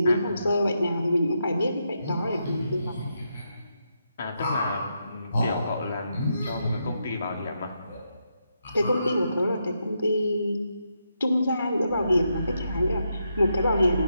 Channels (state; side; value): inverted; both; correlation -0.82